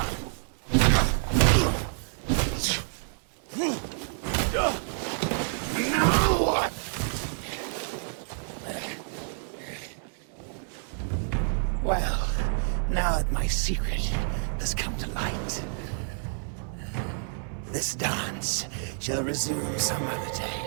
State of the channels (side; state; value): left; silent; digital silence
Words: Well, now that my secret has come to light, this dance shall resume some other day.